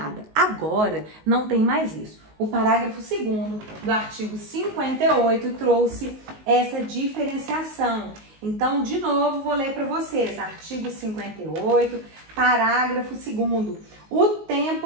Agora, não tem mais isso. O parágrafo 2º do artigo 58 trouxe essa diferenciação. Então, de novo, vou ler para vocês. Artigo 58, parágrafo 2º. O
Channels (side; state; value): left; late; 19 ms